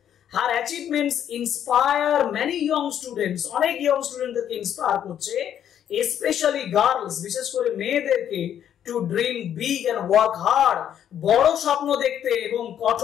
হার achievements inspire many young students, অনেক ইয়ং স্টুডেন্টদেরকে ইন্সপায়ার করছে, স্পেশালি গার্লস, বিশেষ করে মেয়েদেরকে, two dream big and work hard, বড় স্বপ্ন দেখতে এবং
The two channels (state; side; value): quieter; right; 9.9 dB